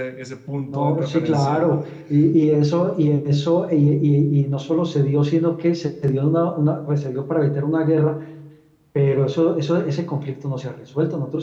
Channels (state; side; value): identical; both; correlation 1.00